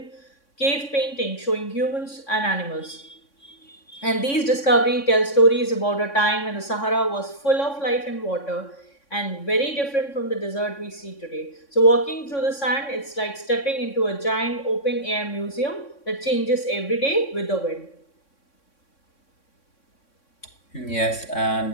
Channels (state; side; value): late; right; 3.6 ms